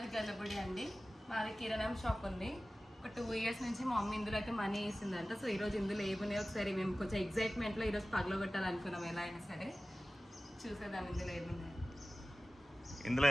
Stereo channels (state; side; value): normal; both; correlation 0.97